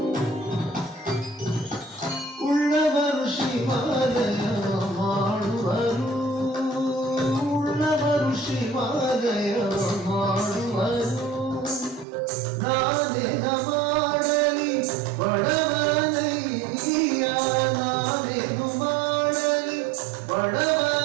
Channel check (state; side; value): drops out; left; at 12.1 s